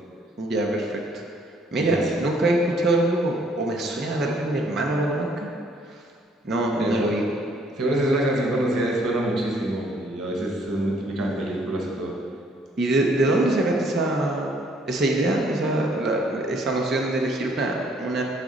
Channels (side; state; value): both; normal; correlation 0.64